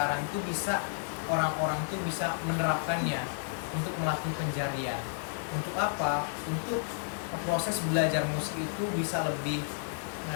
itu bisa orang-orang tuh bisa menerapkannya untuk melatih penjarian. Untuk apa? Untuk proses belajar musik itu bisa lebih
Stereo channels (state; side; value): silent; right; digital silence